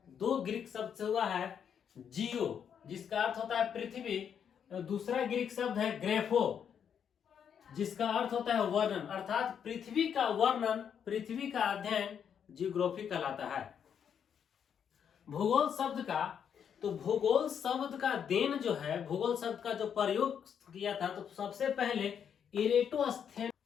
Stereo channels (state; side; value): quieter; right; 8.0 dB